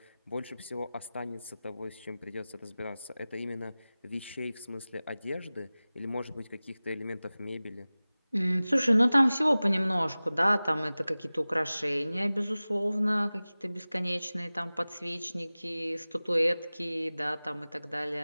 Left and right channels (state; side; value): inverted; both; correlation -0.98